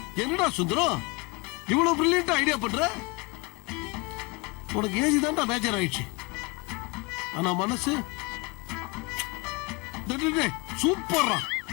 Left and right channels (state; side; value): quieter; right; 28.0 dB